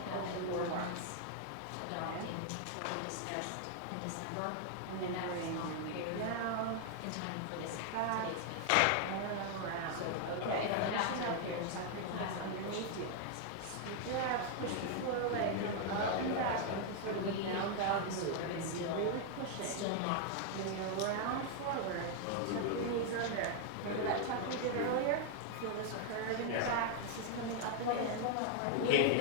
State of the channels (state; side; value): different; both; correlation 0.00